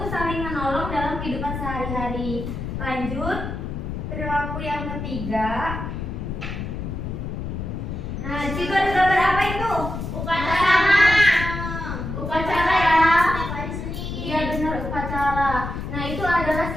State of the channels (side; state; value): left; noise; rumble, 5 dB below the sound